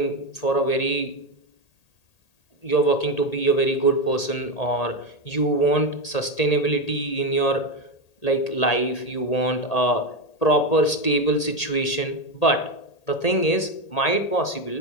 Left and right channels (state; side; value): late; right; 1.8 ms